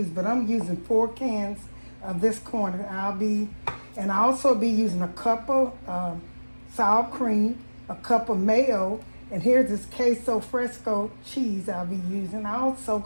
but I'm using 4 cans of this corn. And I'll also be using a cup of sour cream, a cup of mayo, and here's this Queso fresco cheese I'll be using. I'm also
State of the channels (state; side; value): inverted; both; correlation -1.00